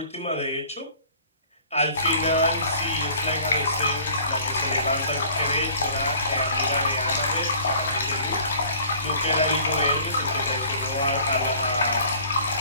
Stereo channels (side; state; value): both; inverted; correlation -0.50